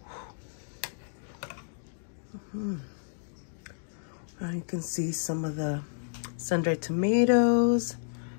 Now you can see some of the sun-dried tomatoes.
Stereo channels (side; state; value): right; silent; digital silence